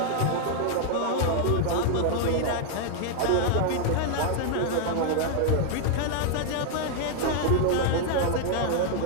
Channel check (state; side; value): different; both; correlation 0.00